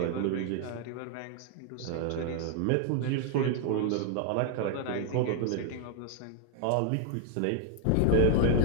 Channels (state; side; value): different; both; correlation 0.00